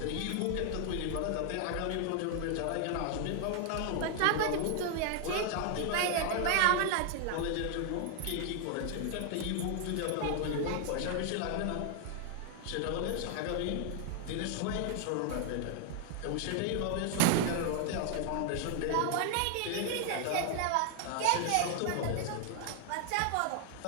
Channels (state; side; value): different; both; correlation 0.00